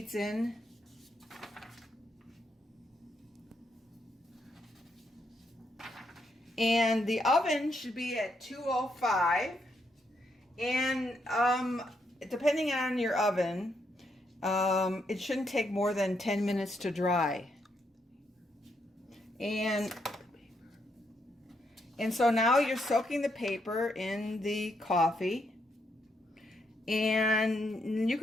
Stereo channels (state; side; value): normal; both; correlation 0.78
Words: in. And the oven should be at 205, and depending on your oven, it shouldn't take more than 10 minutes to dry. And so now you're soaking the paper in the coffee, and you